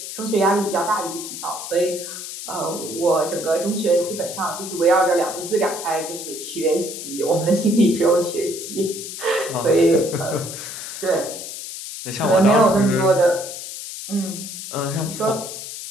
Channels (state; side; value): noise; left; hiss, 9 dB below the sound